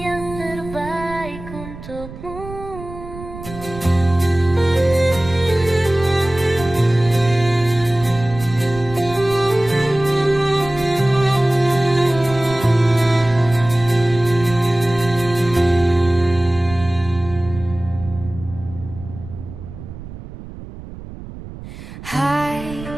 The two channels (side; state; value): right; noise; rumble, 13 dB below the sound